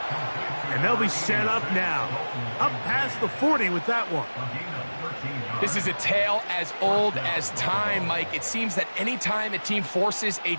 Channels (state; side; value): inverted; both; correlation -1.00